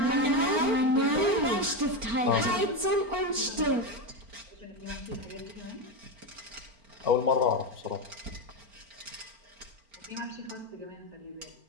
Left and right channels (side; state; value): left; late; 4.4 ms